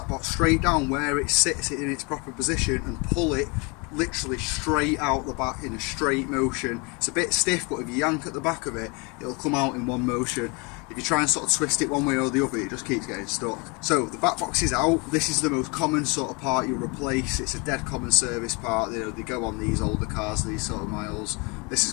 box straight down where it sits in its proper position and pull it literally straight out the back in a straight motion. It's a bit stiff, but if you yank at the back of it, it'll come out in one motion. If you try and sort of twist it one way or the other, it just keeps getting stuck. So the back box is out. This is the most common sort of part you'll replace. It's a dead common service part. You know, they go on these older cars, these sort of miles. This has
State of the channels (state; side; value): quieter; right; 30.1 dB